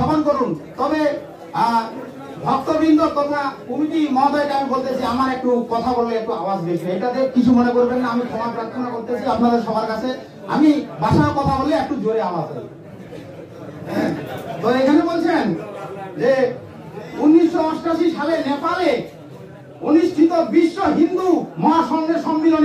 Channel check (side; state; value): both; identical; correlation 1.00